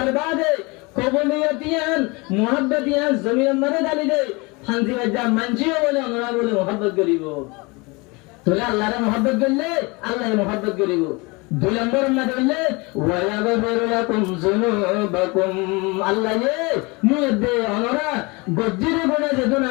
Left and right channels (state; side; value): quieter; right; 26.6 dB